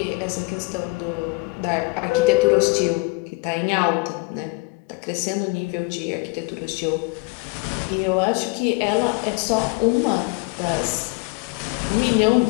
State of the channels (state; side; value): quieter; right; 28.3 dB